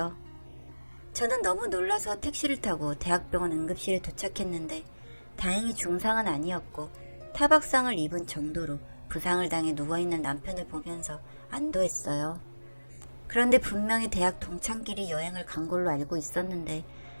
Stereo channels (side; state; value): both; inverted; correlation -1.00